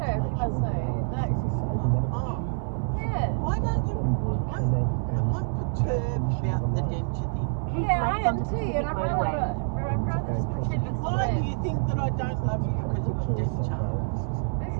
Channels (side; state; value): left; silent; 57 dB below the other